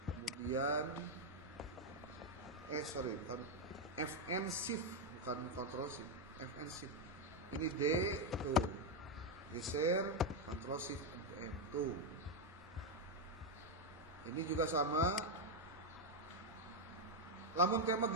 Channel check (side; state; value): both; normal; correlation 0.03